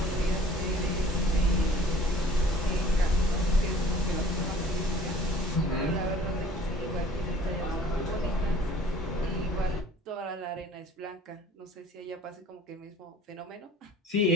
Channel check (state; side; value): normal; both; correlation 0.51